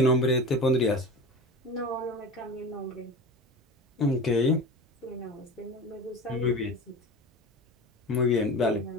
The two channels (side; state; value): both; normal; correlation 0.32